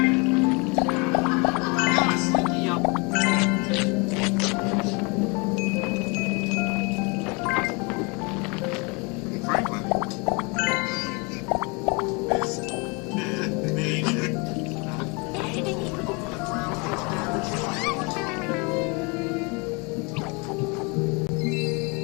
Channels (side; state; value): right; quieter; 30.3 dB